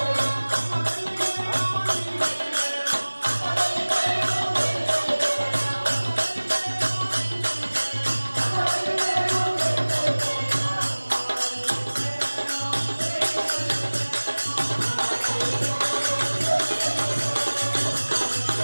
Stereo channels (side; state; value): both; inverted; correlation -1.00